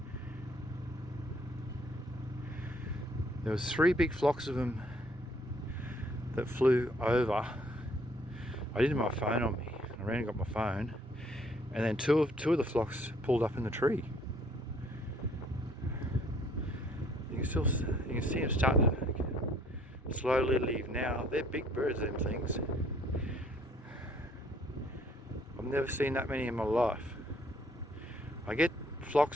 There was 3 big flocks of them that flew over. I didn't have my phone on me. I ran and got my phone, and then two of the flocks pulled up in the tree. You can see them starting to slowly leave now. They're big birds, them things. I've never seen that many in my life. I get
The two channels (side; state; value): both; normal; correlation 0.62